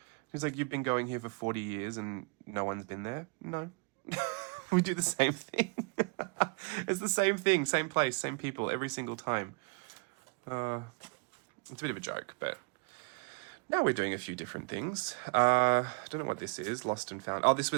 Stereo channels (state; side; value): quieter; left; 31.9 dB